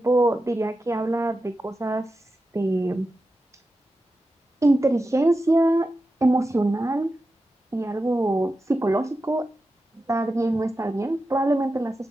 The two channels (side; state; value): both; normal; correlation 0.91